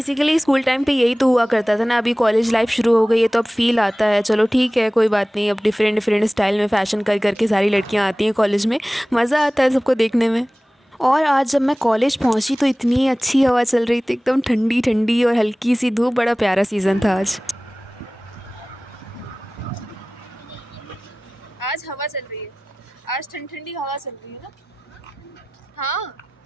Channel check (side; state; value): both; normal; correlation 0.98